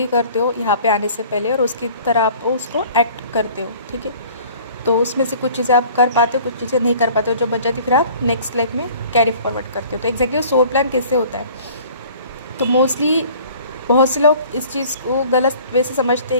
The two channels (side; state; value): both; inverted; correlation -0.50